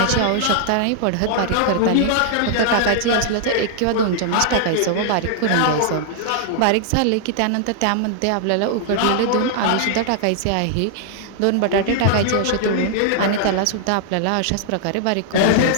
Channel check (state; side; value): different; both; correlation -0.01